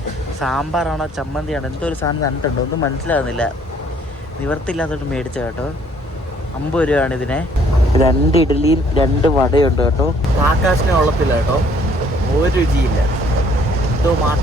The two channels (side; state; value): both; normal; correlation 0.62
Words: സാമ്പാറാണോ ചമ്മന്തിയാണോ എന്തോ ഒരു സാധനം തന്നിട്ടുണ്ട്, ഒന്നും മനസ്സിലാകുന്നില്ല. നിവർത്തില്ലാത്തോട്ട് മേടിച്ച കേട്ടോ. 50 രൂപയാണ് ഇതിനെ. 2 ഇഡ്ഡലിയും 2 വടയുണ്ട് കേട്ടോ. ആകാശിനെ ഉള്ളത്തില്ല കേട്ടോ, ഒരു രുചിയില്ല. എന്തോ